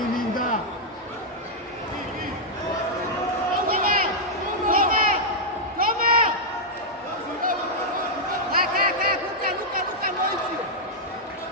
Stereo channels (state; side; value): normal; both; correlation -0.05